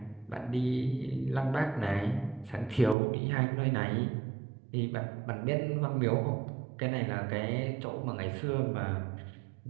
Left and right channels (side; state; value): left; drops out; at 3.0 s